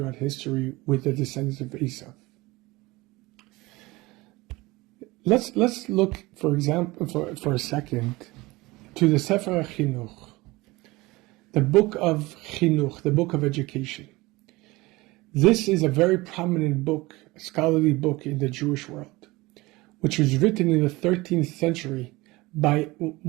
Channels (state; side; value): quieter; left; 21.4 dB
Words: history with the descendants of Esav. Let's look, for example, for a second, to the Sefer HaChinuch, the book of Chinuch, the book of education. This is a very prominent book, a scholarly book in the Jewish world, which was written in the 13th century by